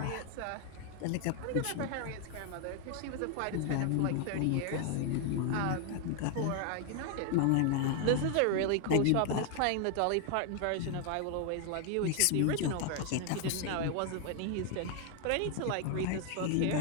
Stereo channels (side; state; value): both; different; correlation 0.00